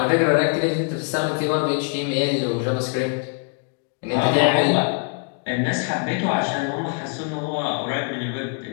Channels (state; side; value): quieter; right; 36.7 dB